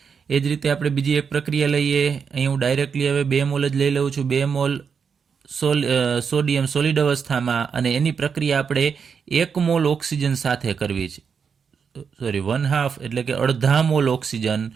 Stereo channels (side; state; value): left; quieter; 6.3 dB